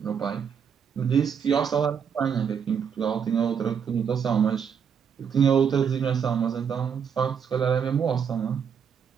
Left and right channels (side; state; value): left; quieter; 7.3 dB